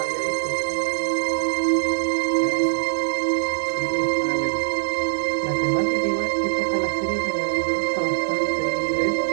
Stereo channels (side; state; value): left; silent; 64 dB below the other